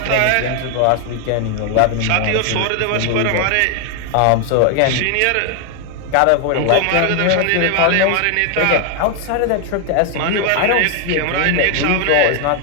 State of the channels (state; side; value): different; both; correlation 0.01